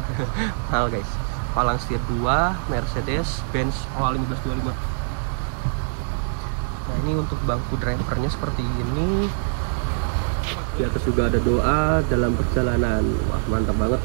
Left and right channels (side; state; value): left; silent; 63 dB below the other